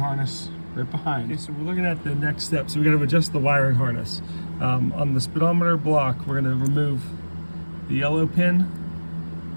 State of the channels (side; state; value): both; inverted; correlation -1.00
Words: right behind. Okay, so we're looking at the next step. So we're gonna adjust the wiring harness. On the speedometer block, we're gonna remove the yellow pin